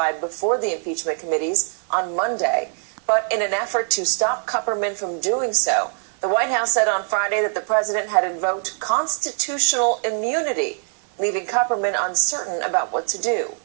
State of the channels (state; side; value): silent; left; 56 dB below the other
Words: before the impeachment committees on Monday. But in an effort to stop Kupperman from doing so, the White House said on Friday that the president had invoked constitutional immunity, leaving Kupperman uncertain about what to do.